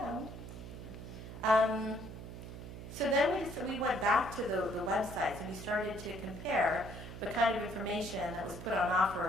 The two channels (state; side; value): noise; right; hum, 11 dB below the sound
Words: So then we went back to the websites and we started to compare the kind of information that was put on